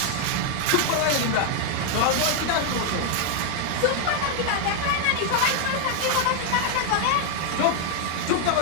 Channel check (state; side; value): different; both; correlation 0.00